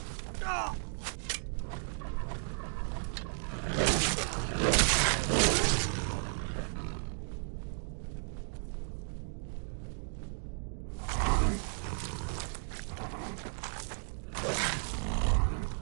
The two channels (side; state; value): left; silent; 55 dB below the other